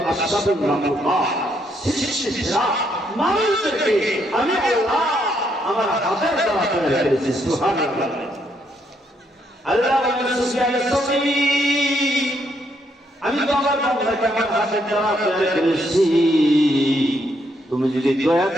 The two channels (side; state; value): both; normal; correlation 0.74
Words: আসবাবুল মাখলুকাত সৃষ্টিরা মানুষদেরকে আমি আল্লাহ আমার হাতের দ্বারা তৈরি করেছি সুবহানাল্লাহ আল্লাহ বলেন সুবহানাল্লাহ আমি তো আমার বান্দাকে আমার হাতের দ্বারা তৈরি করেছি তুমি যদি দয়া